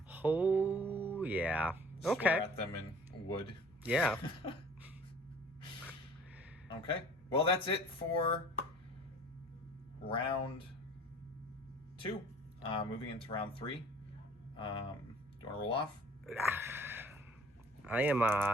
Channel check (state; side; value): normal; both; correlation 0.50